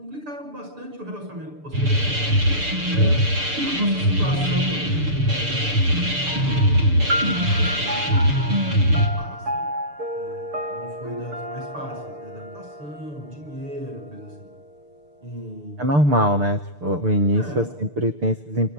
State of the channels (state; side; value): late; left; 6.8 ms